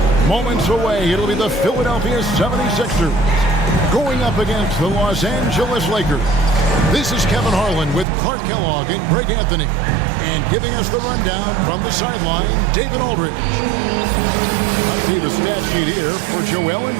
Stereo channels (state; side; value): drops out; left; at 8.1 s